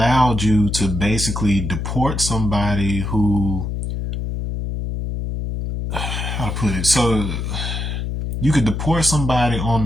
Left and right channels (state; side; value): noise; left; hum, 3 dB below the sound